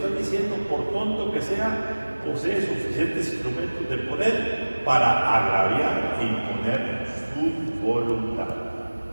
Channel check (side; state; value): both; inverted; correlation -1.00